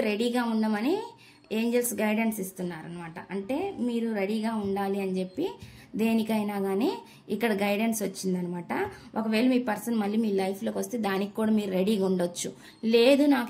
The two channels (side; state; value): both; identical; correlation 1.00